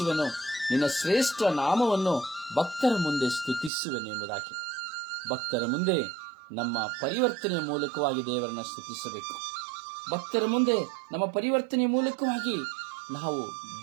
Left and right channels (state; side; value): drops out; left; at 3.7 s